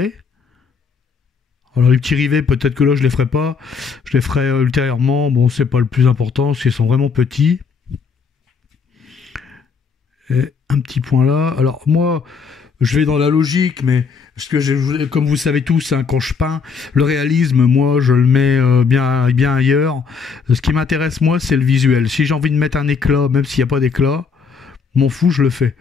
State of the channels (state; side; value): quieter; right; 5.5 dB